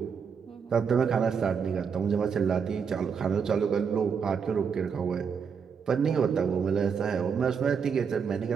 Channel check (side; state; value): left; quieter; 6.4 dB